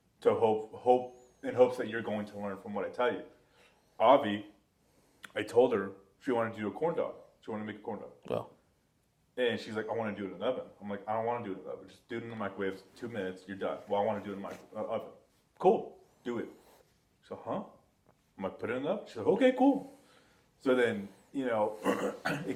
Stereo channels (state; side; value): identical; both; correlation 1.00